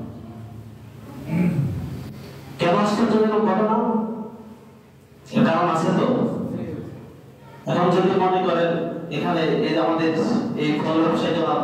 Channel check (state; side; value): identical; both; correlation 1.00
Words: কেন আশ্চর্যজনক ঘটনা এর কারণ আছে তো এখন যদি মনে করেন এখানে এই আমাদের এই